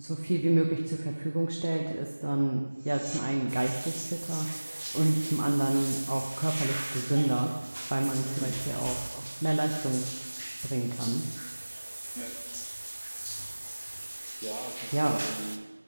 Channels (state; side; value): inverted; both; correlation -1.00